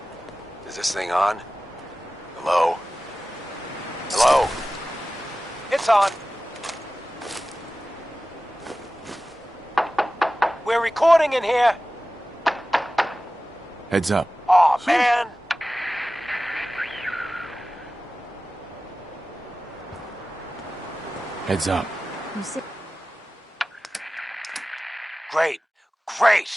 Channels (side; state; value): both; normal; correlation 0.96